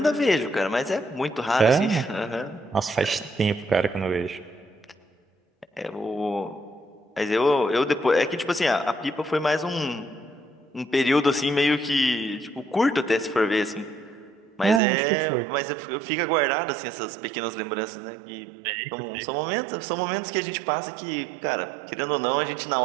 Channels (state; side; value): drops out; left; at 14.8 s